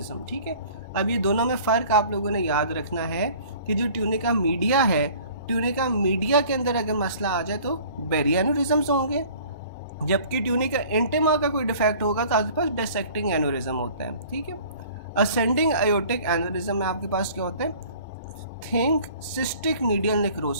ठीक है। अब ये दोनों में फ़र्क आप लोगों ने याद रखना है कि जो ट्यूनिका मीडिया है, ट्यूनिका मीडिया के अंदर अगर मसला आ जाए तो बेरी एन्यूरिज्म्स होंगे, जबकि ट्यूनिका इंटेमा का कोई डिफेक्ट होगा तो आपके पास डायसेक्टिंग एन्यूरिज्म होता है, ठीक है। असेंडिंग आयोटिक एन्यूरिज्म में आपके पास क्या होता है, थिंक सिस्टिक मीडियल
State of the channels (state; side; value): inverted; both; correlation -0.50